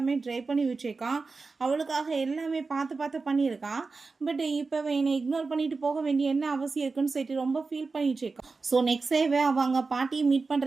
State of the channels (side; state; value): left; quieter; 4.2 dB